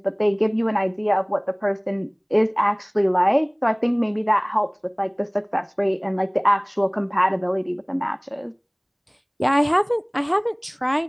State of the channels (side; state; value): both; identical; correlation 1.00